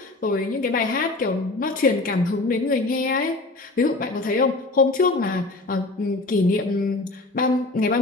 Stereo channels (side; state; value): right; quieter; 3.1 dB